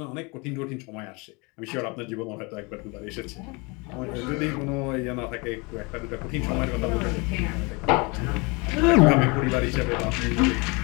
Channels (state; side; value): quieter; right; 28.6 dB